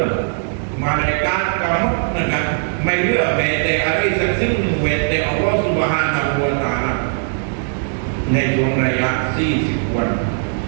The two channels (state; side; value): silent; left; digital silence